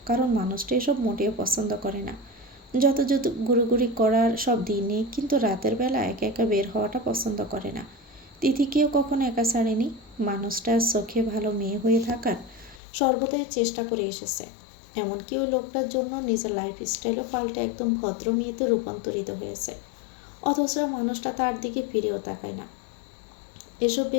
কারণ মানুষটা এসব মোটেও পছন্দ করে না। যত যত ঘুরোঘুরি করার সব দিনে, কিন্তু রাতের বেলা একা একা বের হওয়াটা পছন্দ করে না। তিথিকেও কখনো একা ছাড়েনি। মানুষটার চোখে ভালো মেয়ে হয়ে থাকার সর্বদাই চেষ্টা করে এসেছে। এমনকি ওই লোকটার জন্য নিজের লাইফস্টাইলও পাল্টে একদম ভদ্র মেয়েতে রূপান্তরিত হয়েছে। অথচ মানুষটা তার দিকে ফিরেও তাকায় না। এসব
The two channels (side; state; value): right; drops out; at 12.8 s